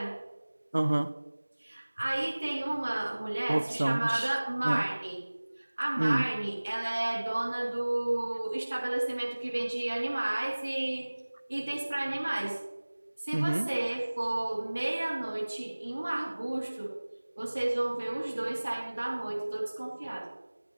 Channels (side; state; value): both; inverted; correlation -1.00